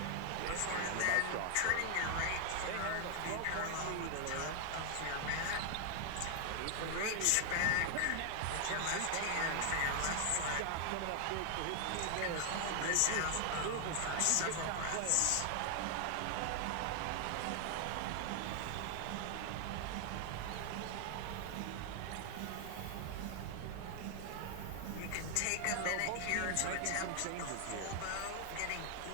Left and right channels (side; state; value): both; different; correlation 0.00